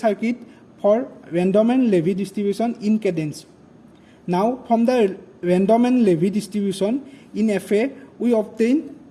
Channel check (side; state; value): both; identical; correlation 1.00